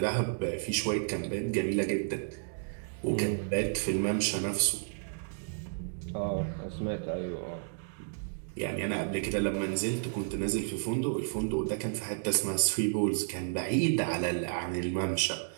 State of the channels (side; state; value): left; silent; digital silence